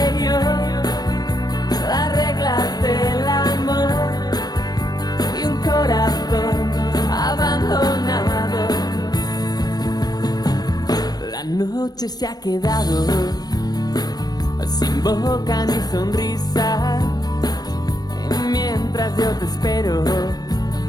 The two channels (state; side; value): late; right; 0.19 ms